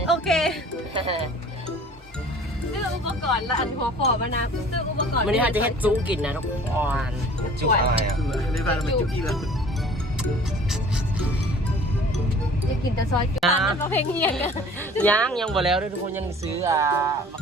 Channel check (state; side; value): normal; both; correlation 0.48